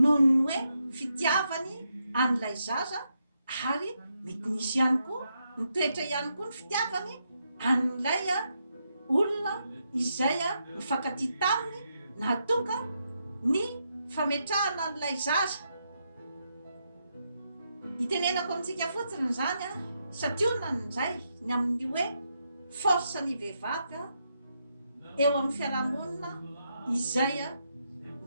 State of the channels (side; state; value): both; inverted; correlation -0.81